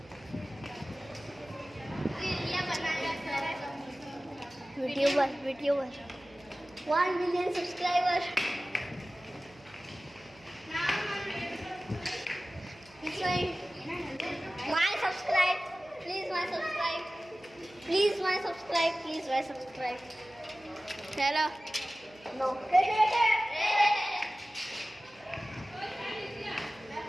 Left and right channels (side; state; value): right; noise; hum, 26 dB below the sound